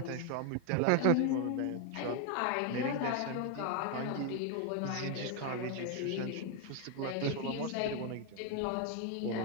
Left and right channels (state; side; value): different; both; correlation 0.01